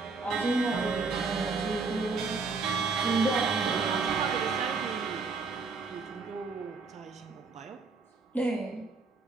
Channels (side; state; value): left; quieter; 4.3 dB